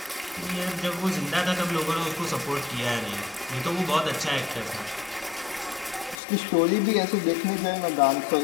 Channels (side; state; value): right; drops out; at 6.2 s